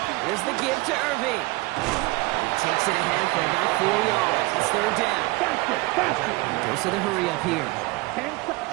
Here's the give to Irving. He takes it ahead for about 4 yards. It's 3rd down. Faster. Goes to the hurry up here.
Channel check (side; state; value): left; quieter; 22.8 dB